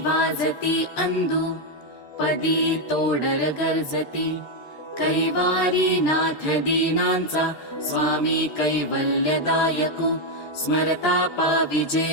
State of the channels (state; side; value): late; right; 13 ms